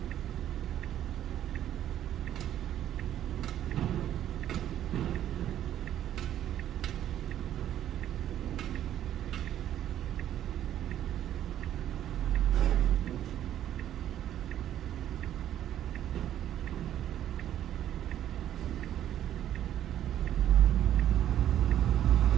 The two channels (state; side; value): quieter; left; 11.4 dB